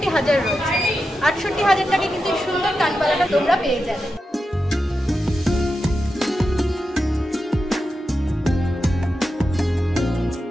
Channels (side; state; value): both; normal; correlation 0.89